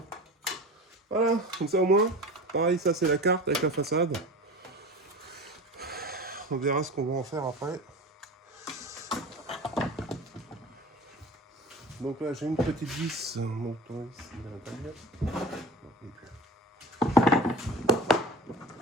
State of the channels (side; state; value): both; normal; correlation 0.35